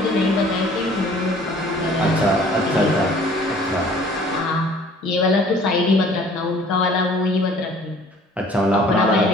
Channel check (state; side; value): normal; both; correlation 0.53